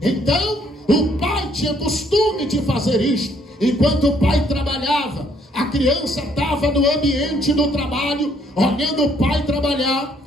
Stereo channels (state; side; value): normal; both; correlation 0.66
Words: Então o pai tinha costume de fazer isto. Enquanto o pai trabalhava, a criança estava no ambiente do trabalho, olhando o pai trabalhar,